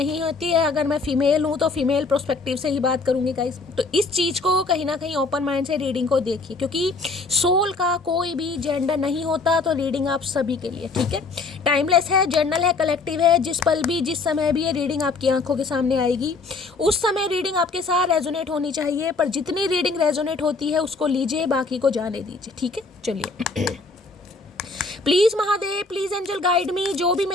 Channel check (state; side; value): quieter; right; 3.9 dB